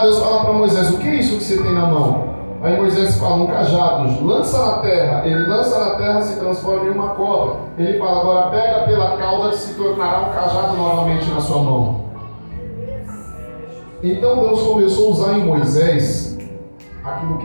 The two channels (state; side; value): inverted; both; correlation -1.00